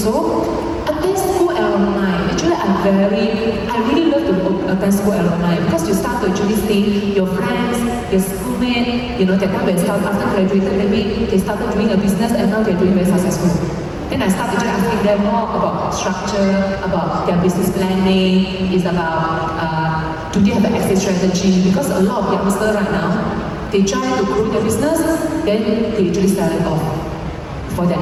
Attend school alumni. Actually, I really love to attend school alumni because you start to actually see your friends, your schoolmates. That time when after graduated, maybe they started doing a business and now they're doing very successful. Then I start actually asking them more about structure, about their business planning. It's about do they have an exit strategy? Because a lot of youngsters right now, they try to grow their business, then they actually sell it off for their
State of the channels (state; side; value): identical; both; correlation 1.00